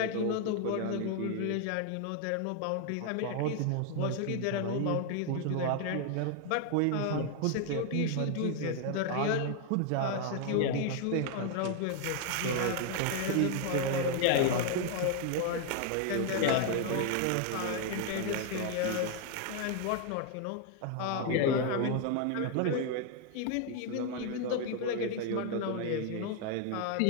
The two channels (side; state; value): both; different; correlation 0.00